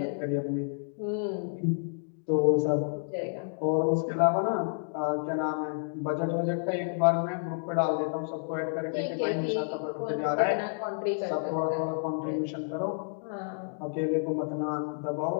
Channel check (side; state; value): right; silent; digital silence